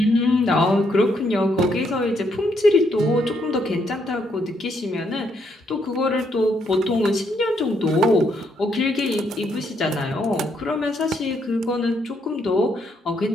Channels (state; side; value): normal; both; correlation 0.74